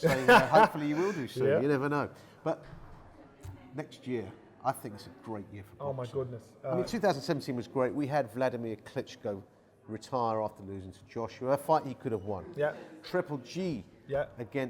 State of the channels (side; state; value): both; identical; correlation 1.00